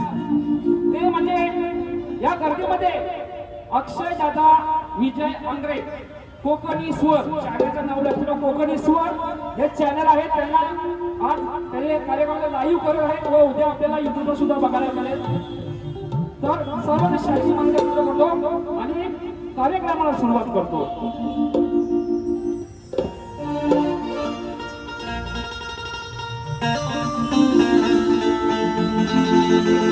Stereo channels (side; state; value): both; identical; correlation 1.00